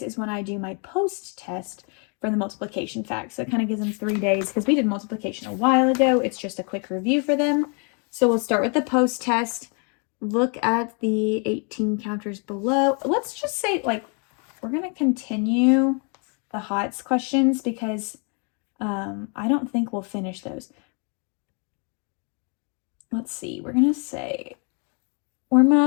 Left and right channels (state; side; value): quieter; right; 36.7 dB